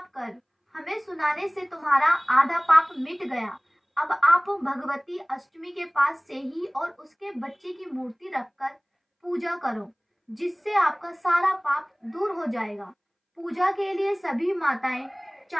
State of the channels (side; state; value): both; identical; correlation 1.00